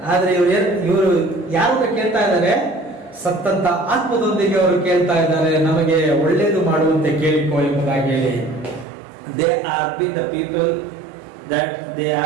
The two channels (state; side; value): drops out; left; at 8.8 s